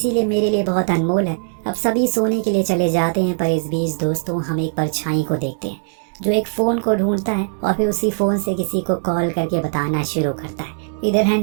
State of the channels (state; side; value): silent; left; 66 dB below the other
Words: मेरे लिए बहुत अनमोल है। अब सभी सोने के लिए चले जाते हैं, पर इस बीच दोस्तों हम एक परछाई को देखते हैं जो एक फोन को ढूंढता है और फिर उसी फोन से किसी को कॉल करके बताना शुरू करता है। इधर